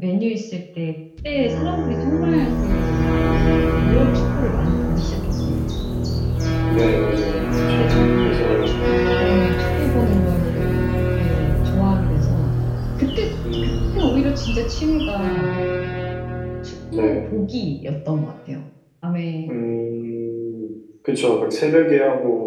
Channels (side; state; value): both; identical; correlation 1.00